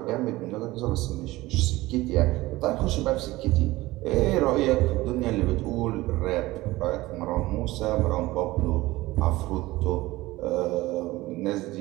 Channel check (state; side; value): quieter; left; 18.8 dB